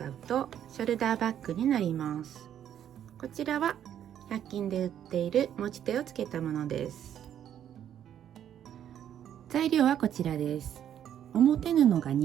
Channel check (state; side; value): quieter; left; 10.1 dB